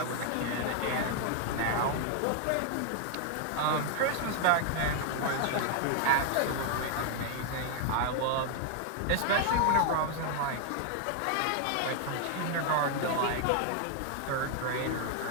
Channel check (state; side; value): different; both; correlation 0.00